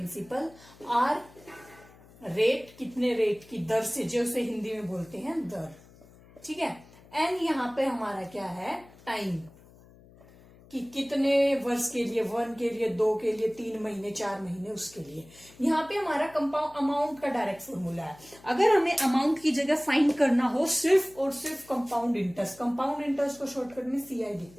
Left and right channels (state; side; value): noise; left; hum, 24 dB below the sound